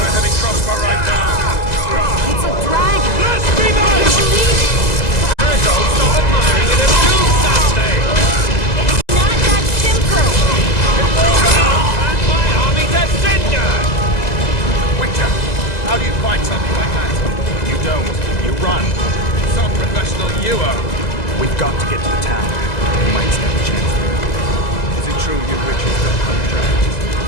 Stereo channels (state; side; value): late; right; 2.0 ms